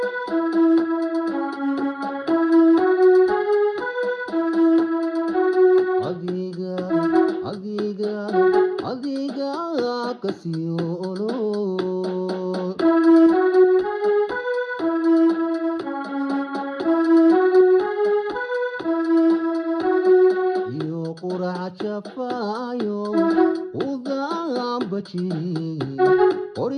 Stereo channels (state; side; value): identical; both; correlation 1.00